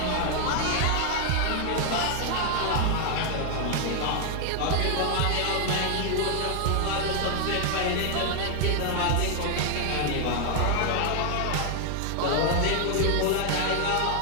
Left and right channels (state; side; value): different; both; correlation 0.00